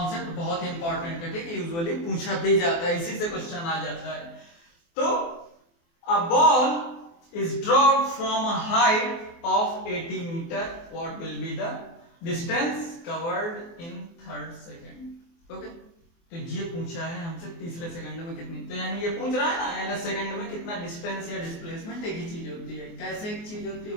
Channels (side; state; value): right; late; 24 ms